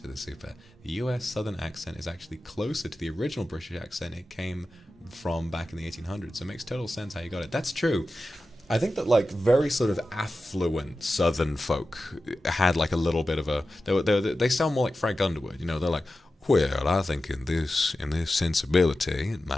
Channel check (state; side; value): normal; both; correlation 0.93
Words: the super. The US Southern accent is actually closer to the original British accent it came from back in the 1800s, so it makes total sense how you got it. That's true. I think that like very sort of affluent Southern folk had like a little bit of a they sound more like Frank Underwood, you know. They're like, well, I think in this sensibility, it